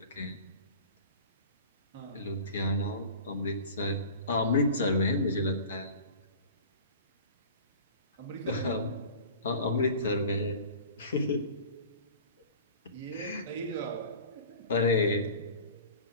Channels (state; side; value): inverted; both; correlation -0.39